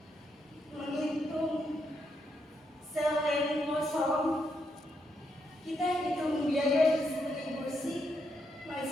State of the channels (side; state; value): both; normal; correlation 0.80